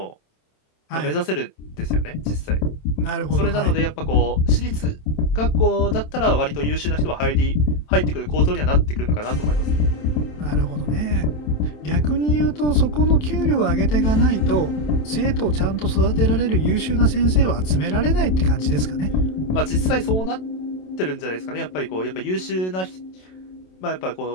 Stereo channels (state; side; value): late; right; 27 ms